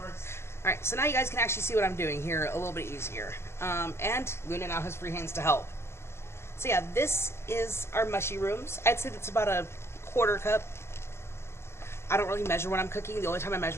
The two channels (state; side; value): late; right; 0.12 ms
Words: Alright, so now you guys can actually see what I'm doing here a little bit easier. And Luna now has free hands to help. So yeah, this is our mushy rooms. I'd say that's about a quarter cup. I don't really measure when I'm cooking. The only time I